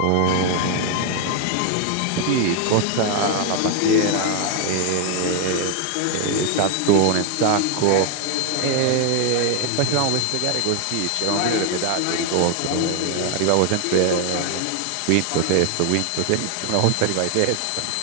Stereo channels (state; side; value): different; both; correlation 0.01